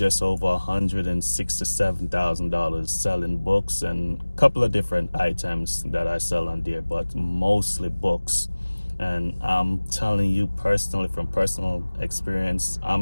over $167,000 selling books and a couple of different items that I sell on there, but mostly books. And I'm telling you personally, from personal experience,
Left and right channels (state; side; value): inverted; both; correlation -1.00